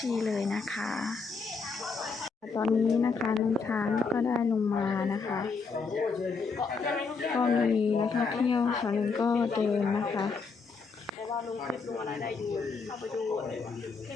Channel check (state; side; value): quieter; right; 4.7 dB